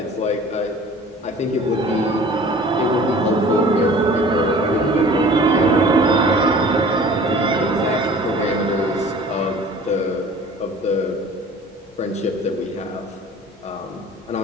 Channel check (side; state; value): both; normal; correlation 0.46